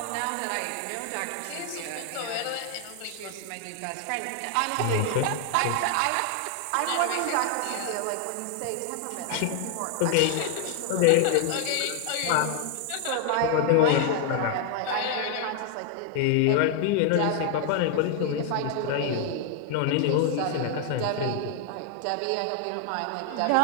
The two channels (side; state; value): both; different; correlation 0.00